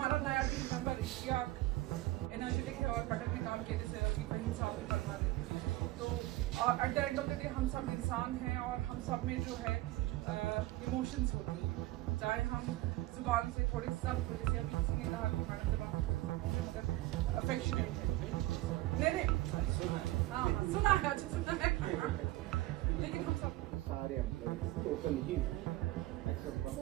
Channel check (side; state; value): left; quieter; 17.5 dB